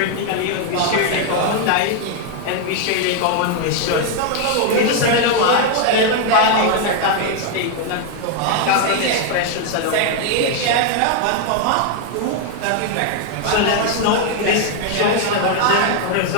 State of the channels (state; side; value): different; both; correlation 0.00